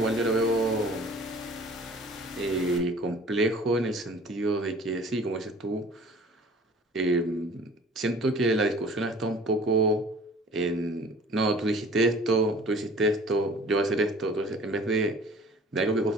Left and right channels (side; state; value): both; normal; correlation 0.48